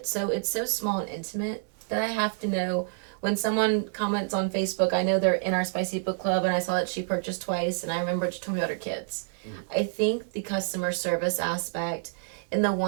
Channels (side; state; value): left; silent; digital silence